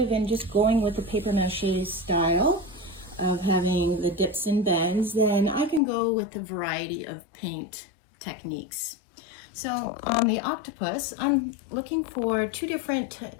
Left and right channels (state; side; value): drops out; right; at 5.8 s